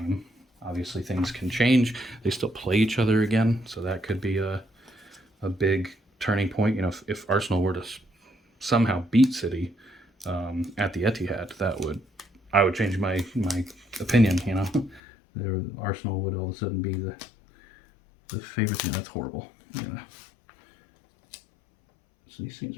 Obviously, things can change. They still play each other again, so that could be a big turning point. You know, if Arsenal were to somehow beat City at the Etihad, I would change my opinion. You know, Arsenal would all of a sudden be the favorites. You know, that's horrible. You know. So these things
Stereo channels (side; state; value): right; drops out; at 15.0 s